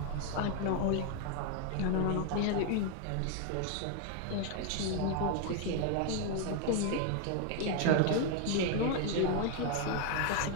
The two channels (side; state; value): both; different; correlation 0.01